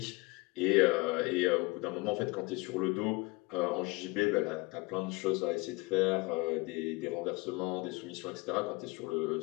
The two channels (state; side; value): quieter; right; 24.7 dB